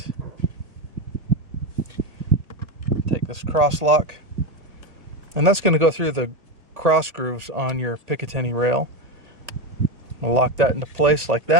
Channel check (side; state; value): left; late; 1.8 ms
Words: Take this cross lock, and that's going to go through the cross grooves on your Picatinny rail. We'll lock that into place like